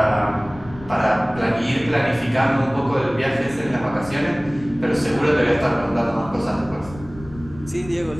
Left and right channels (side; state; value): left; noise; rumble, 17 dB below the sound